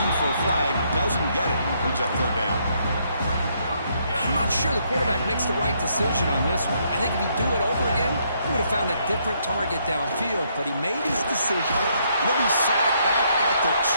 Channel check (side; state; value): both; inverted; correlation -0.72